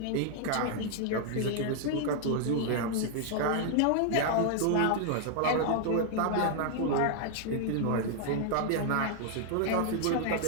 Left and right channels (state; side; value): different; both; correlation 0.00